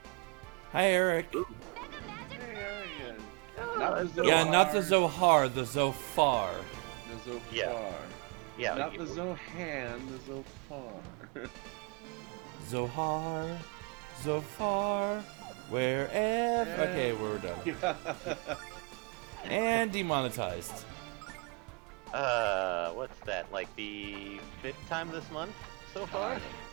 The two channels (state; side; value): quieter; left; 33.2 dB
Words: Hi, Eric. Mega Magic Hey, Flurry! Not the Zohar. Yeah, not the Zohar, the Zophar. The Zophar. Yeah. Yeah, Not you- the Zohan, the Zophar. Zohar, Zophar, wherever. Okay, we're done. And demonetized. what's that? Like the 5th time this month so far?